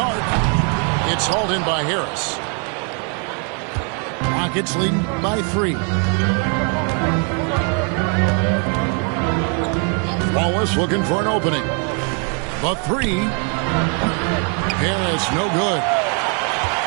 arc. It's hauled in by Harris. Rockets leading by 3. Wallace looking for an opening. The 3. Harris no good.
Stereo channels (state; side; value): quieter; left; 38.8 dB